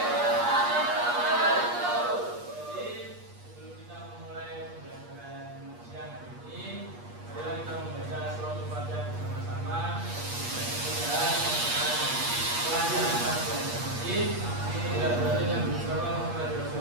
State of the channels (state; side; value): late; left; 8.4 ms